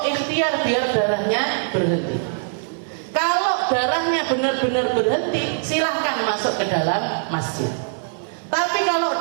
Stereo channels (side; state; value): left; silent; 64 dB below the other